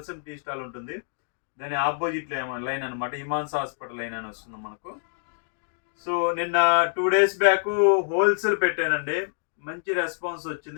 టీ స్టాల్ ఉంటుంది, దాని ఆపోజిట్ లైన్ అనమాట. హిమాంస హాస్పిటల్ లైన్ అని వస్తుంది మనకు. సో నిన్న 2 days బ్యాక్ హోల్సేల్ పెట్టానండి. మంచి రెస్పాన్స్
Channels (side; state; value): right; silent; digital silence